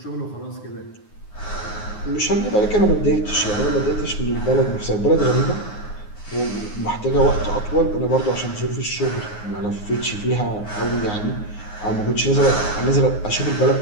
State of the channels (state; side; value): late; right; 9.6 ms